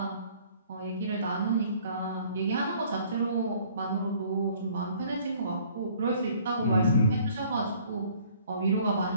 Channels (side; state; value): both; inverted; correlation -0.57